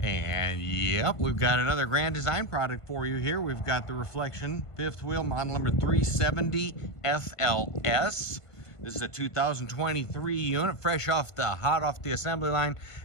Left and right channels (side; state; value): right; late; 1.5 ms